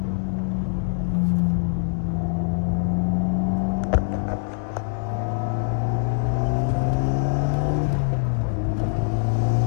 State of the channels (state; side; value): silent; right; digital silence